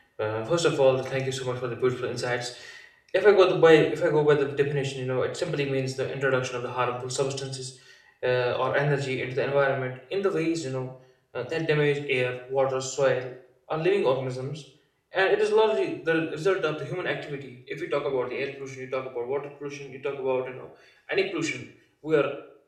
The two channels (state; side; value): identical; both; correlation 1.00